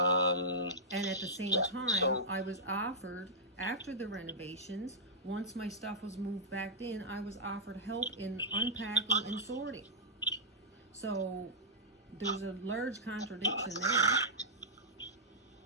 at the same time, I was offered, after the renovations, once my stuff was moved back in, I was offered help in unpacking and sorting. So there's a large contradiction there.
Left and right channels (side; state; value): both; normal; correlation -0.12